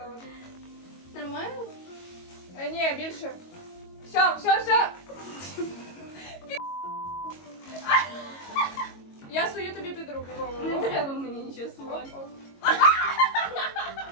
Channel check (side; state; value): right; late; 22 ms